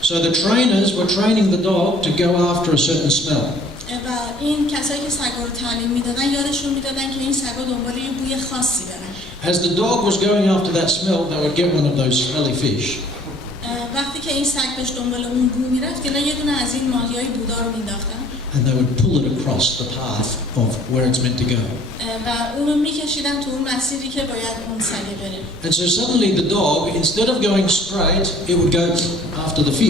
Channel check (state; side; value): normal; both; correlation 0.55